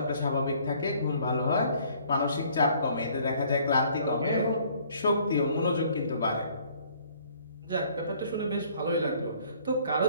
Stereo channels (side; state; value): both; inverted; correlation -0.59